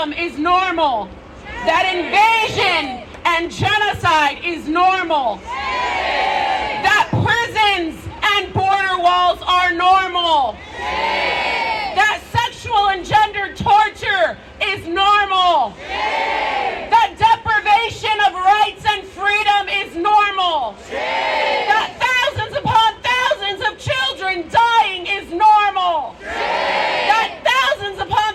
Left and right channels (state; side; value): identical; both; correlation 1.00